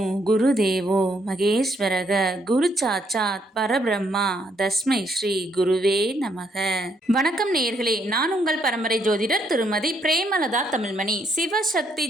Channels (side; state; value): both; normal; correlation 0.72